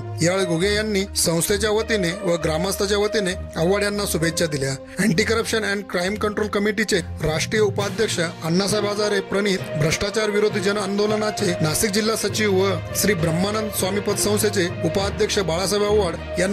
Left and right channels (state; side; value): identical; both; correlation 1.00